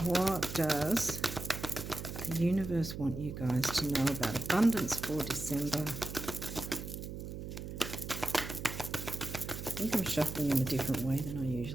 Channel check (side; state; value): right; noise; hum, 8 dB below the sound